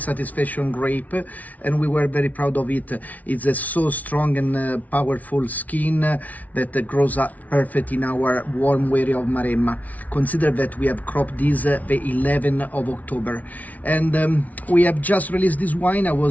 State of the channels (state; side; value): late; right; 0.072 ms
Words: grape, and we were very proud of it. It's a so strong and powerful skin that grows up perfect in our warm area of Maremma. Consider that we have cropped this the 11th of October, and we have just released this wine. I